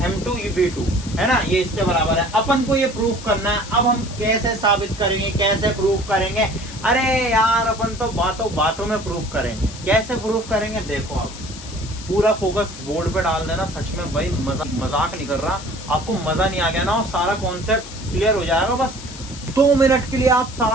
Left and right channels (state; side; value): noise; left; hiss, 14 dB below the sound